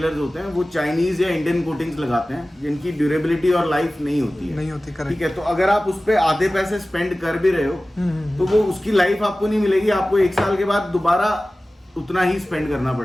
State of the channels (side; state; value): both; normal; correlation 0.97